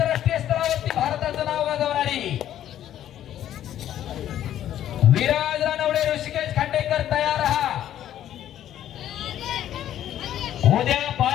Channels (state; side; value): quieter; right; 11.5 dB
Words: स्तरावरती भारताचं नाव गाजवणारी. विराज रानवडे, ऋषिकेश खांडेकर तयार राहा. उद्या